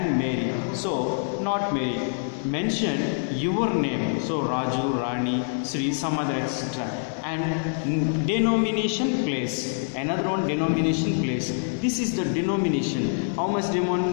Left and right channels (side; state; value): right; silent; digital silence